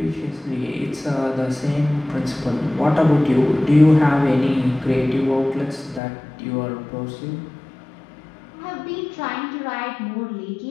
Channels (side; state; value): right; drops out; at 6.0 s